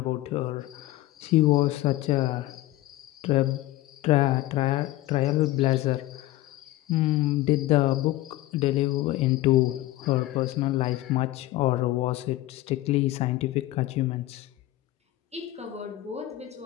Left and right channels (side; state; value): right; quieter; 16.6 dB